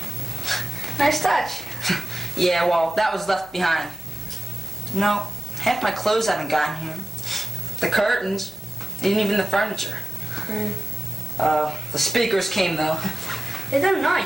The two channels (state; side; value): normal; both; correlation 0.96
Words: Nice touch. Yeah, well, that was left behind. No, half my clothes haven't gotten here. The curtains, even the furniture. The speakers came, though. Hey, they're